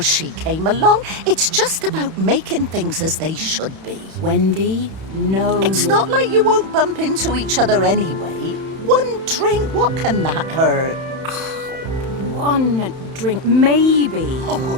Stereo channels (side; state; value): left; late; 31 ms